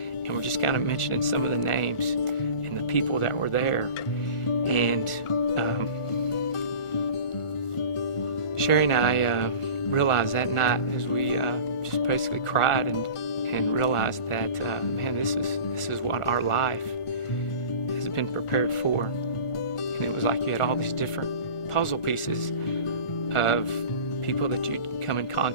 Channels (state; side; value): late; right; 1.4 ms